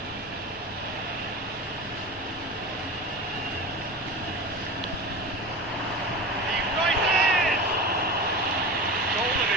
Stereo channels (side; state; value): both; normal; correlation 0.30